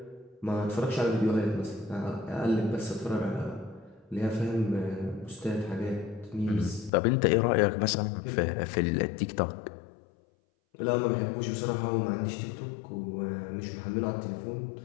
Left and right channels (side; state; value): right; drops out; at 6.9 s